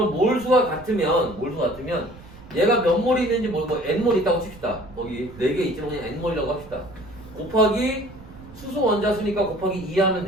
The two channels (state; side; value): noise; right; rumble, 19 dB below the sound